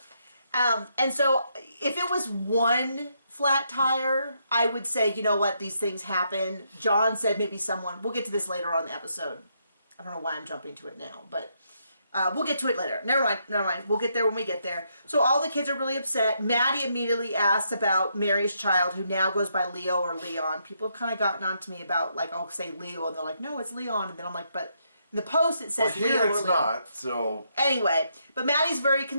And so if it was one flat tire, I would say, you know what, these things happen. John said maybe someone, we'll get to this later on in the episode. I don't know why I'm jumping to it now, but we'll get to it later. Never mind. We'll get there when we get there. So all the kids are really upset. Maddie immediately asks about Mary's child, who now goes by Leo or Leon. People have kind of gotten on to me about, like, I'll say Leo, and they're like, no, it's Leon. And then I'm like, but in the post it says Leo Leo or it's Leon. not, so... Anyway, but Maddie's very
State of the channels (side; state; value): both; inverted; correlation -0.77